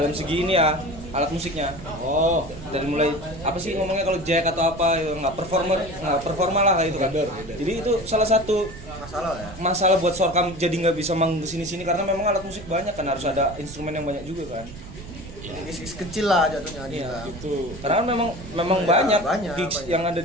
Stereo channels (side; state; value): right; noise; rumble, 14 dB below the sound